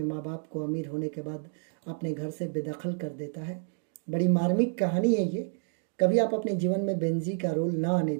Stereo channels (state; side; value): silent; left; 58 dB below the other